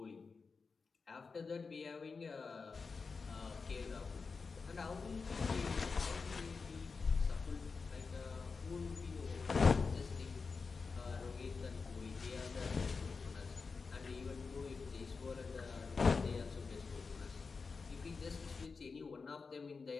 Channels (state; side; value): quieter; right; 4.7 dB